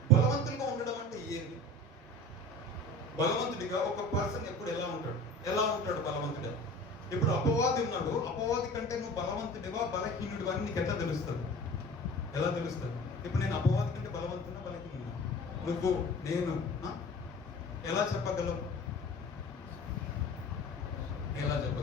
బలవంతులుగా ఉండడం అంటే ఏంటి? బలవంతుడిగా ఒక పర్సన్ ఎప్పుడు ఎలా ఉంటాడు బలవంతుడిగా? ఇప్పుడు అపవాది ఉన్నాడు, అపవాది కంటే నువ్వు బలవంతుడివా బలహీనుడివా అని నీకు ఎట్లా తెలుస్తుంది? ఎలా తెలుస్తుంది? ఇప్పుడు నేను అపవాది కంటే బలవంతున్నా బలహీనుడినా? నువ్వు నేను ఎలా చెప్పగలం? ఎలా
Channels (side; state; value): both; normal; correlation 0.39